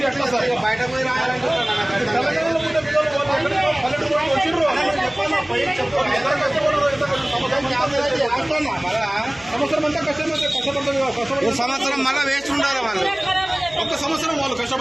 ఎట్లా సార్ బయట పోయి సంవత్సరం మళ్ళా వేస్ట్ ఉండాలి వాళ్ళు. ఒక్క సంవత్సరం వాళ్ళు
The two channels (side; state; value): left; noise; hum, 24 dB below the sound